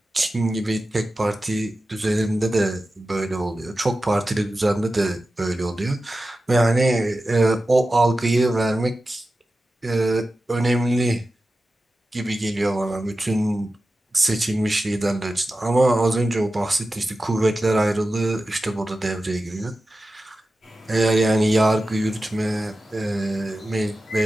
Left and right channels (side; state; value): both; normal; correlation 0.94